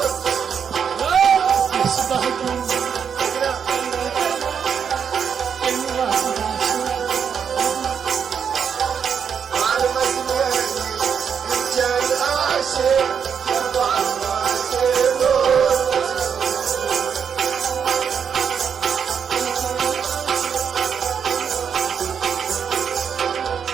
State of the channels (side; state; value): left; quieter; 7.2 dB